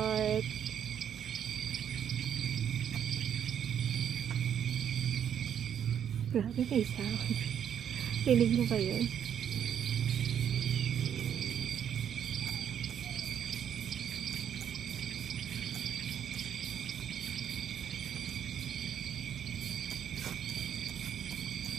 Grabe may sound. Rinig mo ba yun?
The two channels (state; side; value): quieter; left; 9.0 dB